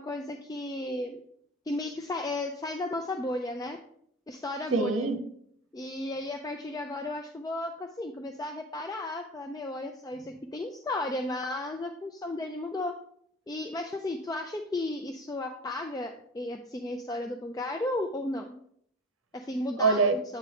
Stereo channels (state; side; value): normal; both; correlation 0.31